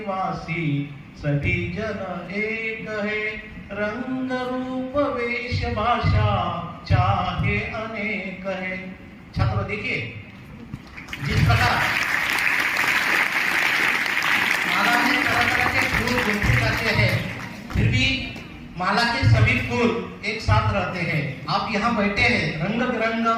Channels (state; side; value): identical; both; correlation 1.00